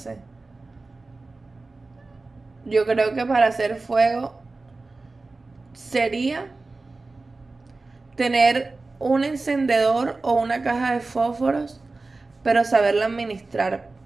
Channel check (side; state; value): left; quieter; 3.5 dB